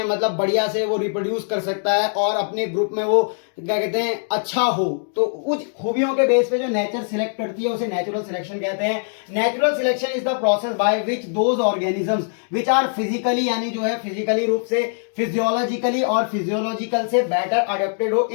मतलब बढ़िया से वो रिप्रोड्यूस कर सकता है, और अपने ग्रुप में वो क्या कहते हैं अच्छा हो। तो उस खूबियों के बेस पे जो नेचर सिलेक्ट करती है उसे नेचुरल सिलेक्शन कहते हैं। Natural selection is the process by which those organisms which are physically, यानी जो है फिजिकली रूप से, फिजियोलॉजिकली और फिजियोलॉजिकल से बेटर अडेप्टेड हो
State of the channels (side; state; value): right; silent; digital silence